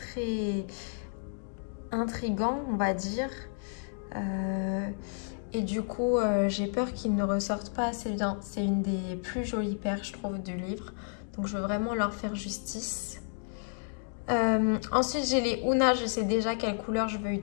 intriguant, on va dire. Et du coup, j'ai peur qu'ils ne ressortent pas assez bien. C'est une des plus jolies paires, je trouve, du livre. Donc, je veux vraiment leur faire justice. Ensuite, j'ai les Una. Je sais déjà quelle couleur je veux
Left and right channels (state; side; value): silent; right; digital silence